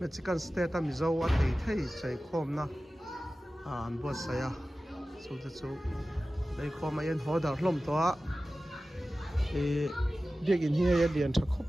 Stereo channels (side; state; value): both; normal; correlation 0.96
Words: Mexican state mizo a thei chei khom na an buat saya chu te chu dei khom a yen hodar hlom to a biak in hi ya lian tha khop